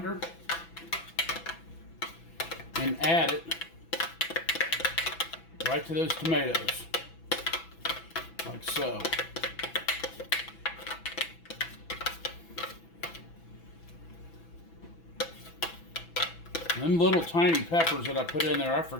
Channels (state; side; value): late; right; 6.0 ms